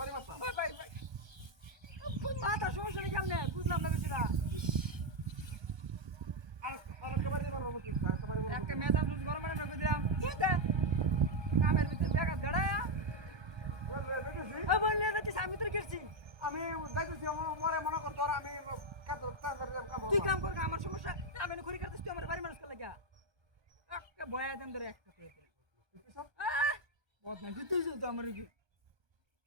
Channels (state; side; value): late; left; 1.3 ms